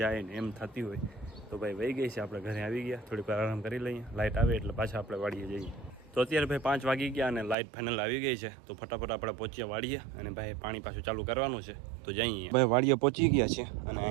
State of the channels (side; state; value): left; drops out; at 7.6 s